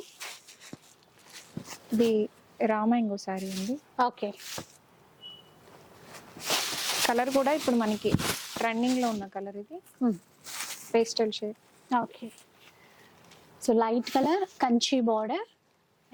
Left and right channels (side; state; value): both; identical; correlation 1.00